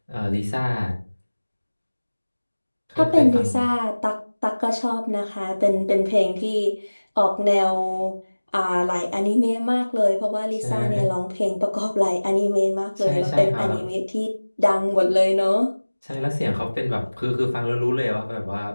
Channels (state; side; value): inverted; both; correlation -1.00